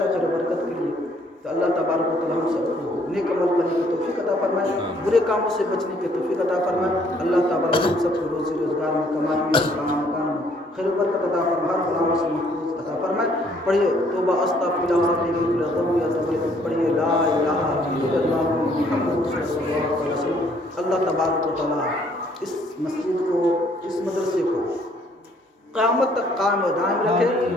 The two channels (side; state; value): both; normal; correlation 0.63